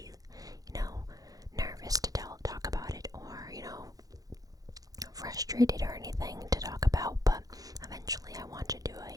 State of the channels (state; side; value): late; left; 0.18 ms